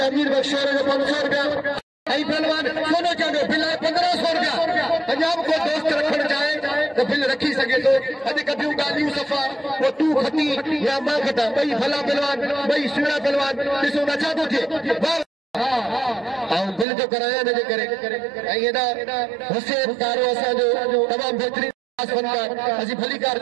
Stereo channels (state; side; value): drops out; left; at 16.9 s